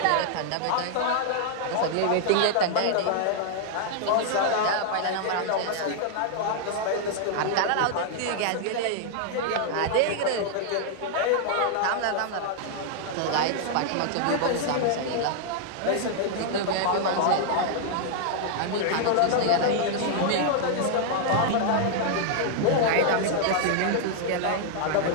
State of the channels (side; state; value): both; different; correlation -0.01